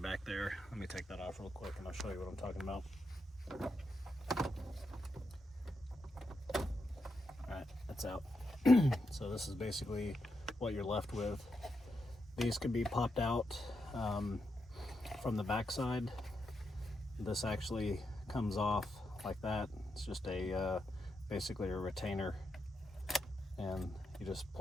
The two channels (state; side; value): normal; both; correlation 0.84